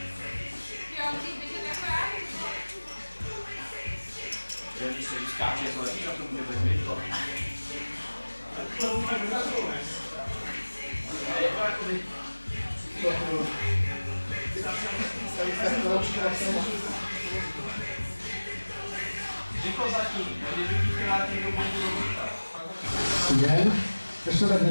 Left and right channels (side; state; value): both; inverted; correlation -1.00